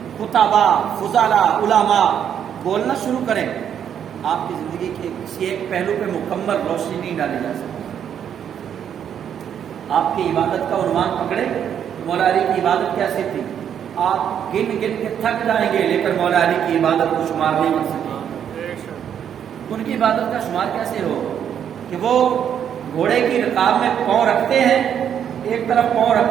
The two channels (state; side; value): quieter; left; 8.9 dB